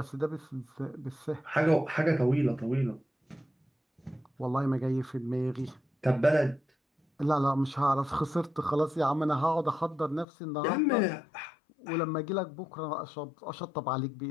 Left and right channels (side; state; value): right; drops out; at 10.2 s